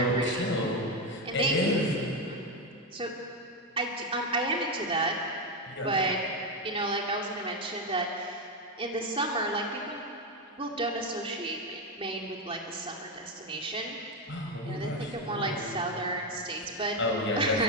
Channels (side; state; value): both; normal; correlation 0.09